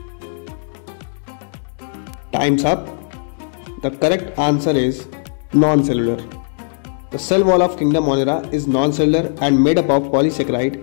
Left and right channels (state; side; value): silent; right; digital silence